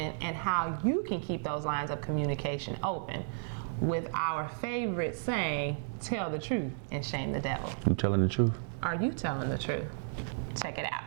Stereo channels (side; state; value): left; silent; digital silence